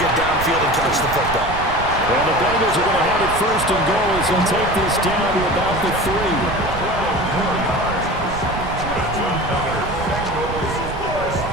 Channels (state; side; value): noise; right; rumble, 8 dB below the sound